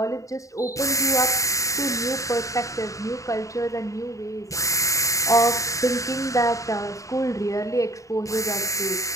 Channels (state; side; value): late; right; 0.16 ms